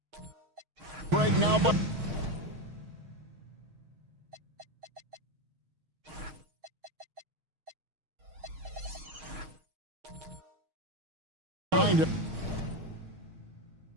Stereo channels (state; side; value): late; left; 6.4 ms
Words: Break now. Behind it.